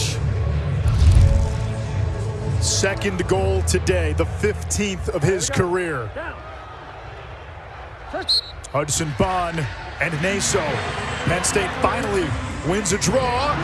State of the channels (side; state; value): both; identical; correlation 1.00